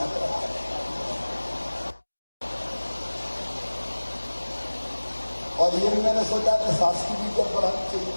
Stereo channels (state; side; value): inverted; both; correlation -1.00